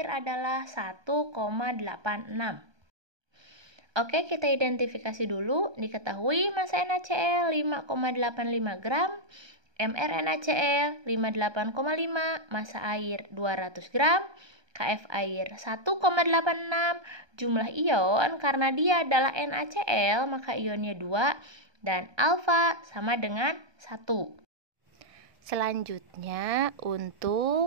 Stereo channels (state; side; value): late; left; 1.2 ms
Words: adalah 1,86. Oke, kita identifikasi dulu. Diketahui massa NaCl 5,85 gram, mR NaCl 58,5, massa air 200 gram, Kf air 1,86, jumlah ion karena dia adalah NaCl maka ionnya 2 dan alfa sama dengan 1. Selanjutnya